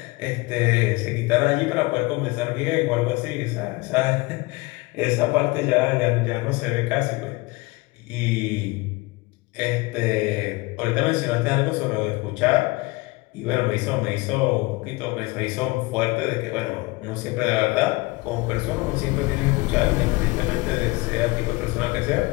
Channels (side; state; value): right; quieter; 22.9 dB